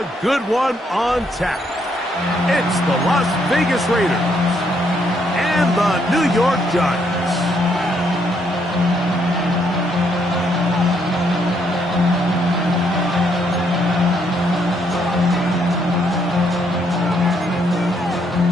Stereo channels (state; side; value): normal; both; correlation 0.73